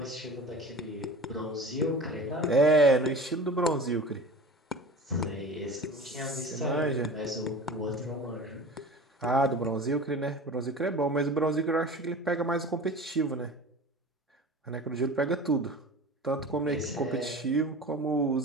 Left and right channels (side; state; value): both; normal; correlation 0.36